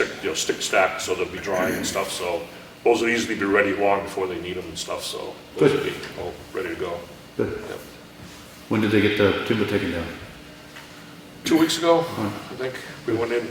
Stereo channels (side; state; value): both; identical; correlation 1.00